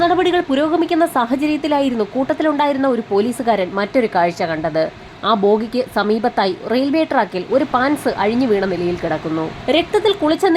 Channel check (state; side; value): identical; both; correlation 1.00